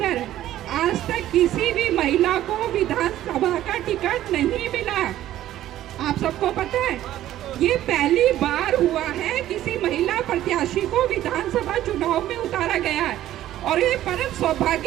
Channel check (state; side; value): quieter; left; 13.2 dB